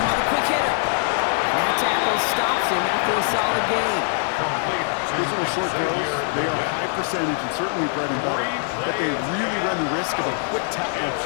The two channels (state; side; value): silent; right; 58 dB below the other